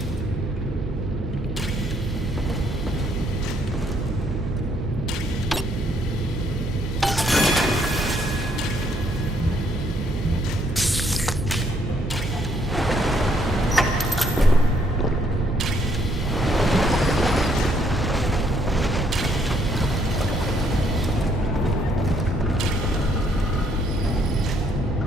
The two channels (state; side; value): normal; both; correlation 0.69